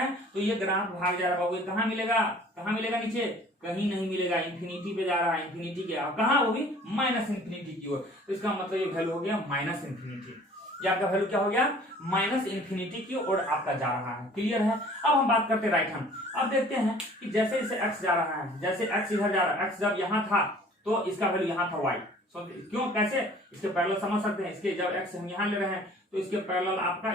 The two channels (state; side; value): normal; both; correlation 0.51